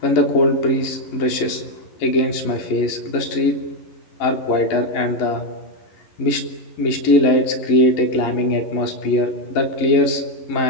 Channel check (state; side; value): late; right; 11 ms